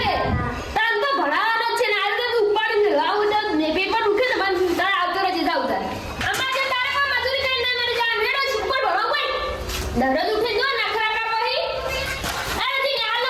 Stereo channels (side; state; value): both; identical; correlation 1.00